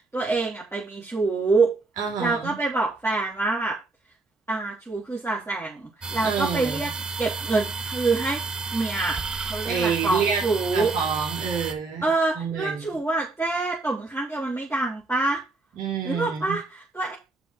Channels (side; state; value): left; quieter; 3.5 dB